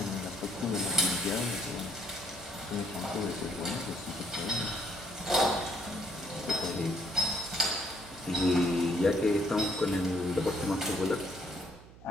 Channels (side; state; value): right; noise; hum, 20 dB below the sound